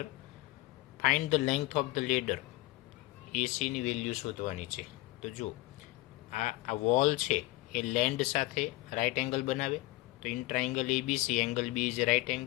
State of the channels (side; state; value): right; quieter; 19.5 dB